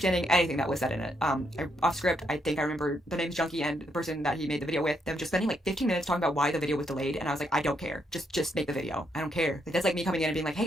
anything that was said in it. Off script, I think I remember The Name's Junkie and the person that he made the video with, them just spending like 15 minutes talking about why the video was delayed, and I was like, I don't care. Just make the video. I don't care. Like, that's like me coming in and being like, hey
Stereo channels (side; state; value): both; normal; correlation 0.76